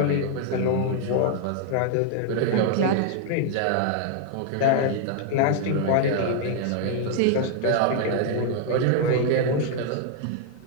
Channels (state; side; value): different; both; correlation 0.00